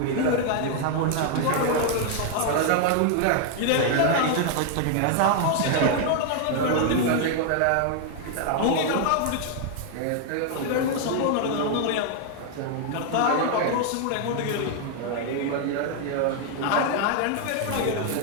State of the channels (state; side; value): different; both; correlation 0.00